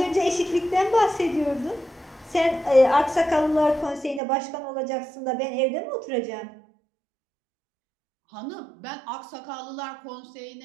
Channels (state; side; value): drops out; left; at 4.2 s